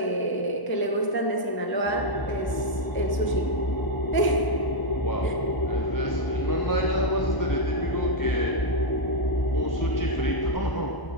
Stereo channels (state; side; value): late; right; 1.0 ms